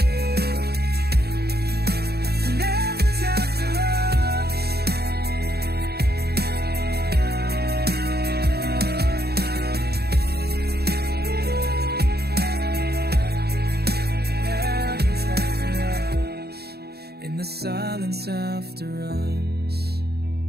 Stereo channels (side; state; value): left; late; 0.47 ms